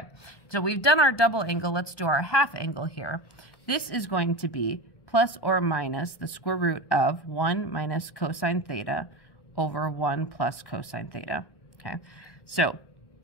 so we've done our double angle. Let's do our half angle here. This is going to be plus or minus the square root of 1 minus cosine theta over 1 plus cosine theta. Okay, so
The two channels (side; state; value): right; late; 1.1 ms